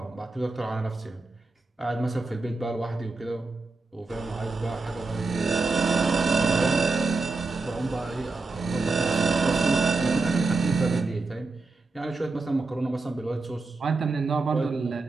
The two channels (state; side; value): quieter; left; 3.7 dB